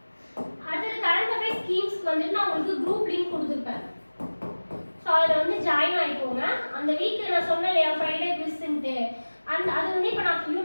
அடுத்தது கரண்ட் அஃபேர்ஸ் ஸ்கீம்ஸ்க்கு வந்துட்டு நான் உங்களுக்கு குரூப் லிங்க் கொடுத்துருப்பேன். ஸோ அதில் வந்து ஜாயின் ஆகிக்கோங்க. அந்த வீக் நான் சொன்னேன் இல்லையா, ஃப்ரைடே குவிஸ்ன்ட்டு, அது வந்து இப்போ நான்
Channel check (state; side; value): inverted; both; correlation -1.00